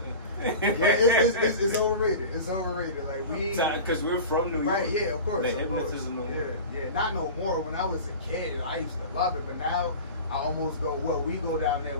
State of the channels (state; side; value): inverted; both; correlation -0.33